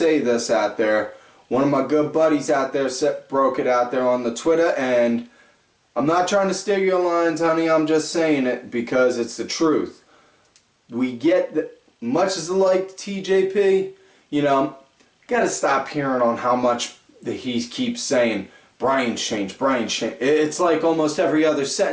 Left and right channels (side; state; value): both; identical; correlation 1.00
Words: this out there. One of my good buddies out there broke it out there on the Twitter, and I'm not trying to steal your lines, honey. I'm just saying it because it's the truth. We get much as I like TJP, you know, gotta stop hearing on how much that he keeps saying Brian's changed, Brian's changed. It's like almost every other